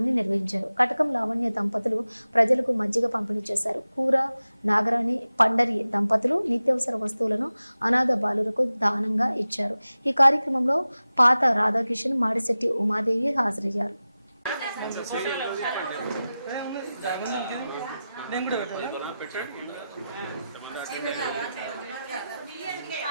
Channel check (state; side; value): inverted; both; correlation -0.94